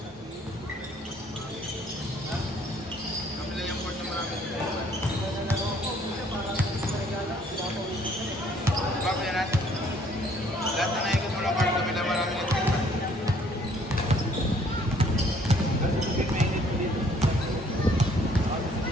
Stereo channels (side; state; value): both; normal; correlation 0.61